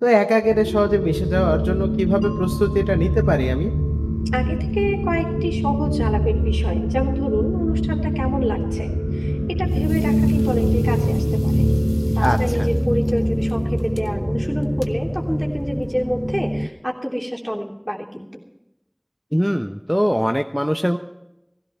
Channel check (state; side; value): identical; both; correlation 1.00